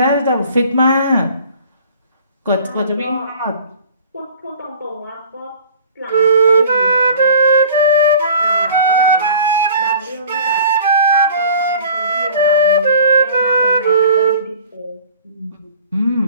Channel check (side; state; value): both; inverted; correlation -0.47